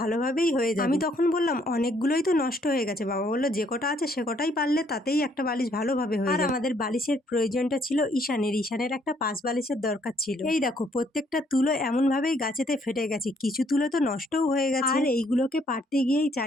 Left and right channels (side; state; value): both; normal; correlation 0.67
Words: হয়ে যাবে। আমি তখন বললাম অনেকগুলোই তো নষ্ট হয়ে গেছে। বাবা বললো যে কটা আছে সে কটাই পারলে তাতেই একটা বালিশ ভালোভাবে হয়ে যাবে। আর আমাদের বালিশের প্রয়োজনটা ছিল ঈশানের একটা পাঁচ বালিশের দরকার ছিল। এই দেখো প্রত্যেকটা তুলো এমন ভাবেই গাছেতে ফেটে গেছে, কিছু তুলো তো নষ্টও হয়ে গেছে। আর এইগুলোকে পারতে গিয়েই